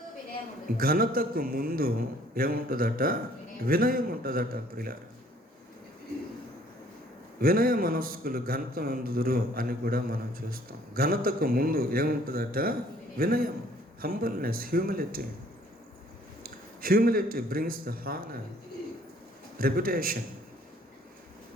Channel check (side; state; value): both; normal; correlation 0.59